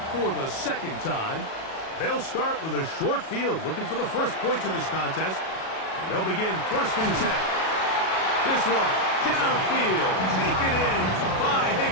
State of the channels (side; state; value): right; late; 37 ms